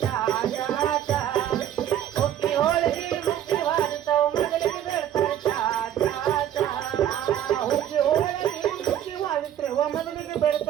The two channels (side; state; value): left; quieter; 10.8 dB